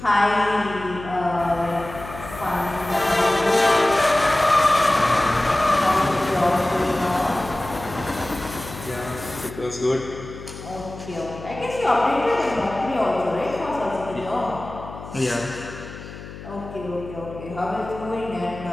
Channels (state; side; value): noise; left; hum, 13 dB below the sound